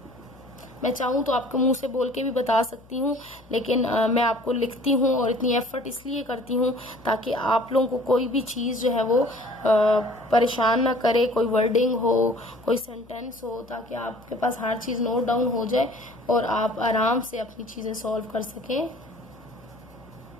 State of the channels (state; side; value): noise; left; hum, 26 dB below the sound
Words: मैं चाहूँ तो आपके मुंह से बोल के भी बता सकती हूँ, लेकिन मैं आपको लिखती हूँ और इतनी एफर्ट इसलिए करती हूँ ताकि आप लोगों को कोई भी चीज़ जो है वो परेशान ना करे, कोई वर्डिंग हो, कोई सेंटेंस हो, ताकि आपके पास हर चीज़ नोट डाउन हो जाए और आप आराम से अपनी चीज़ें सॉल्व कर सकें।